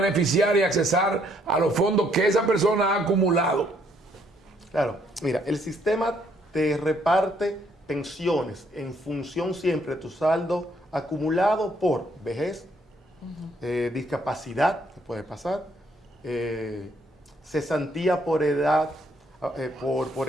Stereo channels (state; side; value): normal; both; correlation 0.69